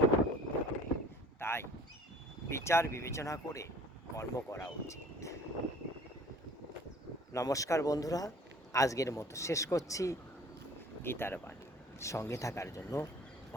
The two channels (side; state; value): both; normal; correlation 0.51